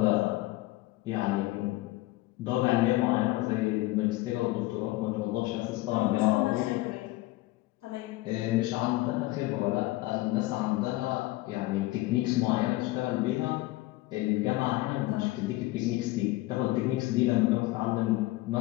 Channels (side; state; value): right; quieter; 19.1 dB